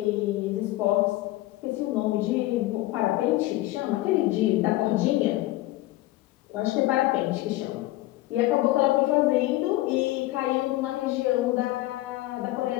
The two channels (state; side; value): quieter; right; 17.4 dB